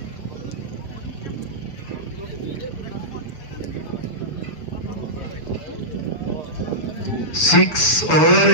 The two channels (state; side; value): late; right; 7.1 ms